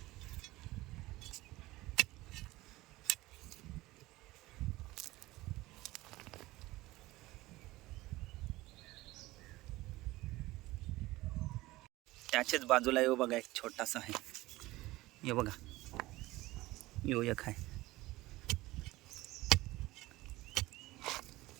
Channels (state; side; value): quieter; left; 18.9 dB